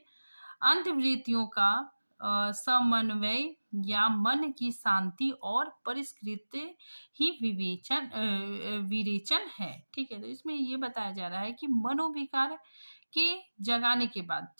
अंतर्वृत्तियों का समन्वय या मन की शांति और परिष्कृत ही विरेचन है, ठीक है। तो इसमें ये बताया जा रहा है कि मनोविकार के जगाने के बाद,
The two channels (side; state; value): both; inverted; correlation -1.00